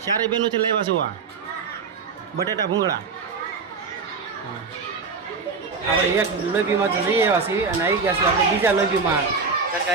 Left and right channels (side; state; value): left; quieter; 4.9 dB